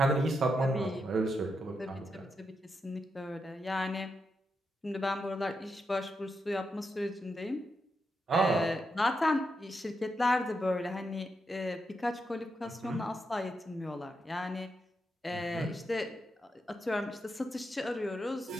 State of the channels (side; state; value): both; normal; correlation 0.84